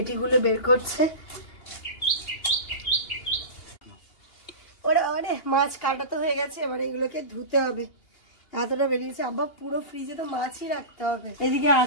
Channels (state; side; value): late; right; 2.8 ms